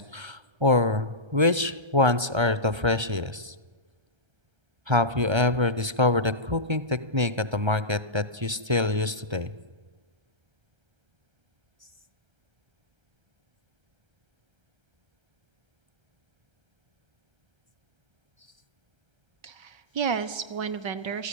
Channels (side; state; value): left; late; 1.3 ms